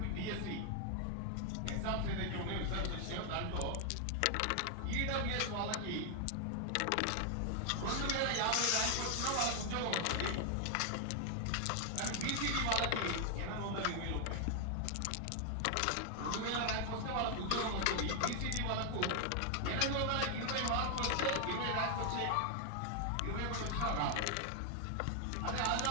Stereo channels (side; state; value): both; different; correlation 0.00